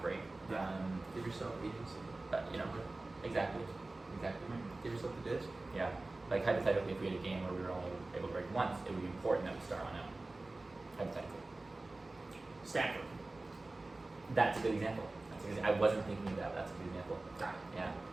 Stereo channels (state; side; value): quieter; left; 3.1 dB